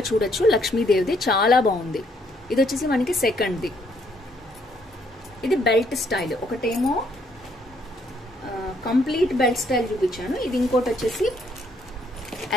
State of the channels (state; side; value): normal; both; correlation 0.69